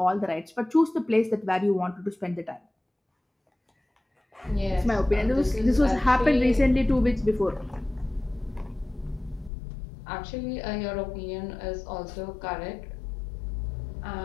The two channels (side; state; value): right; drops out; at 9.5 s